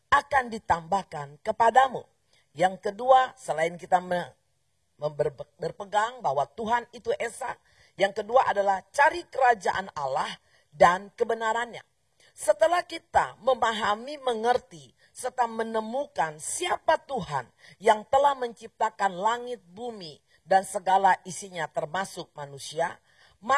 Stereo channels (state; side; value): identical; both; correlation 1.00